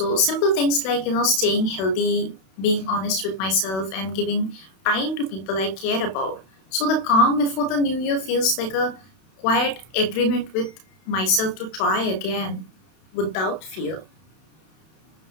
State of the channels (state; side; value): late; right; 31 ms